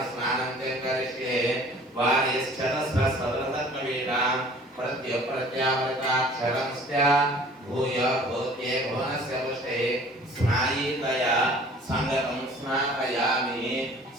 స్నానం చ కరిష్యే వారిశ్చతస్రసదృతత్వవేదా ప్రత్యప్రత్యామృతాక్షరంస్య భూయ భూత్యే భువనస్య పుష్టే స్నాయీతయా సంగతం స్నాపయామి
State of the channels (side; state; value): both; normal; correlation 0.50